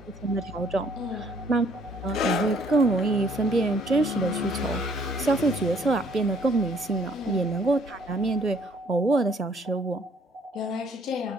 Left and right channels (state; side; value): normal; both; correlation 0.62